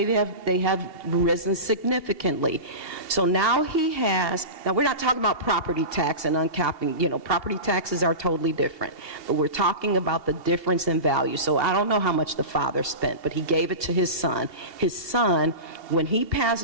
have risen significantly. So now now we're not talking about property tax and uncapping, property taxes are totally different, but we're talking about the difference in value. So I don't know how much the father spent, but he gave it to his son. His son, when he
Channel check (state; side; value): late; left; 2.7 ms